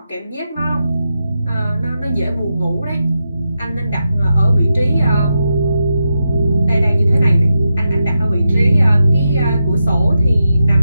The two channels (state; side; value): inverted; both; correlation -0.87